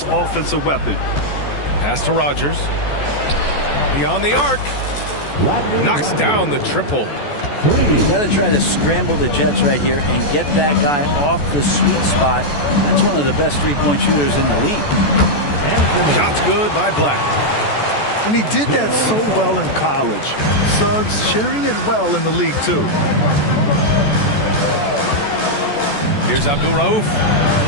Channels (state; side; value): late; right; 14 ms